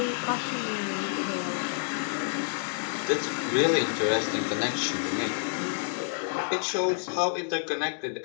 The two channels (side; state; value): right; silent; digital silence